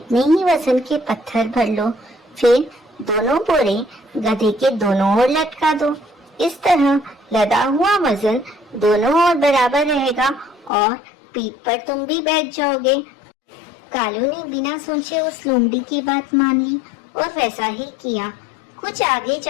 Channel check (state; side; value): drops out; right; at 10.7 s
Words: ही वजन के पत्थर भर लो, फिर दोनों बोरे गधे के दोनों ओर लटका दो। इस तरह लदा हुआ वजन दोनों ओर बराबर रहेगा और पीठ पर तुम भी बैठ जाओगे। कालू ने बिना सोचे उस लोमड़ी की बात मान ली और वैसा ही किया। कुछ आगे